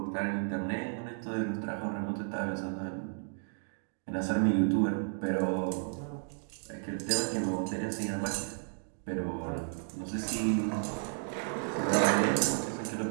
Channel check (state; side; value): silent; left; 56 dB below the other